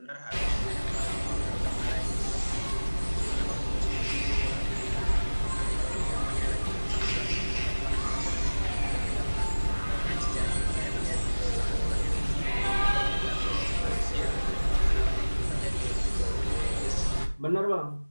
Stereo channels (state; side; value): inverted; both; correlation -1.00